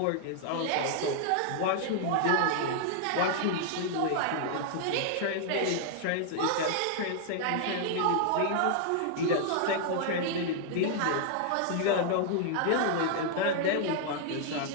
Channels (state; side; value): different; both; correlation -0.01